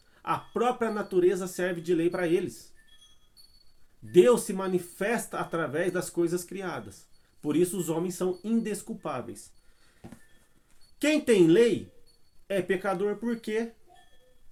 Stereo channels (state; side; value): identical; both; correlation 1.00